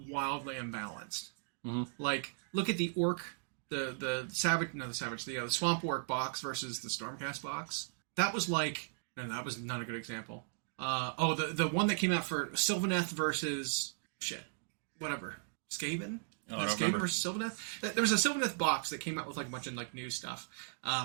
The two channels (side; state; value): left; silent; digital silence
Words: wildly imbalanced. Mm-hmm. Like, look at the orc, the swamp orc box versus the stormcast box. That was like, no, that was not a good example. The one that came out for Sylvaneth versus Skaven? Skaven versus Sylvaneth? There was a Sylvaneth box that came out with like a bunch of like new stuff.